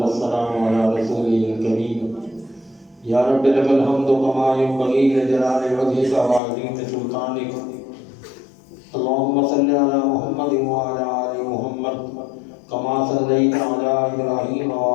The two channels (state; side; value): drops out; right; at 6.4 s